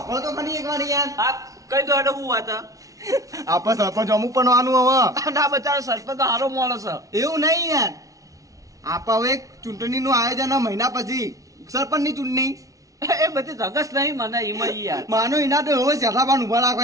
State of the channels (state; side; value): late; left; 0.17 ms